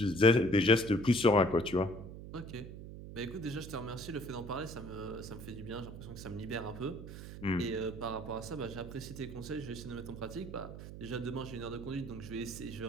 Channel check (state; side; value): noise; right; hum, 11 dB below the sound